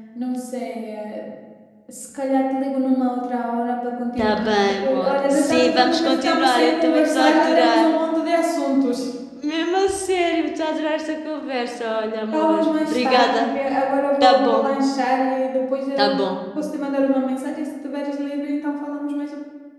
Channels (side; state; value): both; identical; correlation 1.00